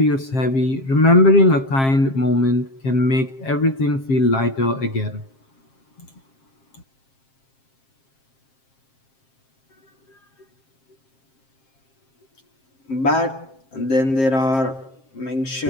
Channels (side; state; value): right; late; 7.5 ms